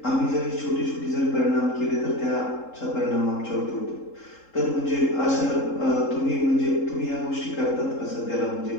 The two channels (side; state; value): right; late; 3.7 ms